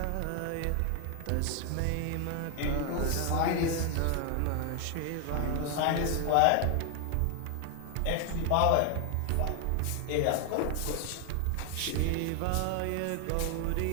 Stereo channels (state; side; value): different; both; correlation 0.00